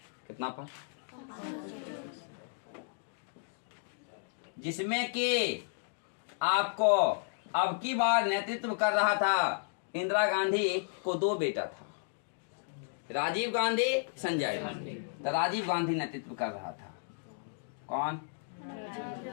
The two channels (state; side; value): silent; right; digital silence